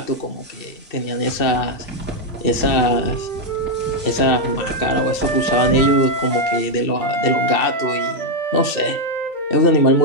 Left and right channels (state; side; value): late; right; 2.6 ms